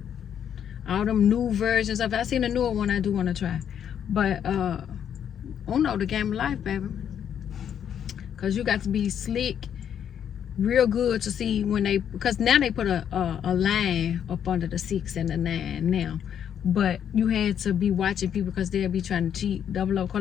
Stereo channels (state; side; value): quieter; right; 8.9 dB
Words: All them new versions of it. I seen a newer one I do want to try. But Uno, the game of life, baby. Cause you got to be slick, real good to see when they, because now they put a line up under the 6 and the 9 now. But you had to be watching people because they'll be trying to cheat, double up